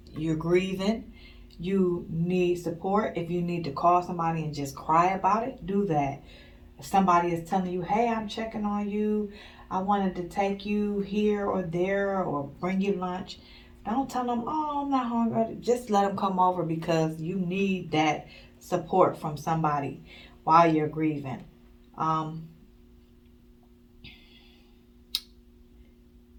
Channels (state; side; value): identical; both; correlation 1.00